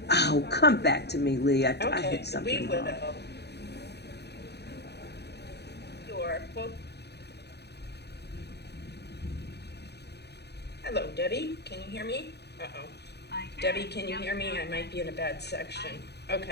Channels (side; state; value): right; late; 0.48 ms